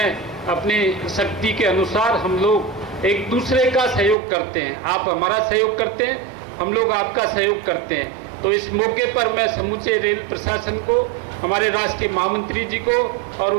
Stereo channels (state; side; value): drops out; left; at 4.2 s